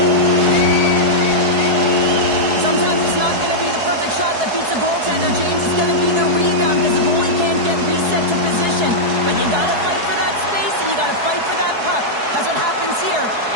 Sometimes it's not going to be the perfect shot that beats a goaltender, James. It's going to be the rebound because the goalie can't get reset to position. But you got to fight for that space and you got to fight for that puck. That's what happens here,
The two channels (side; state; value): left; late; 4.7 ms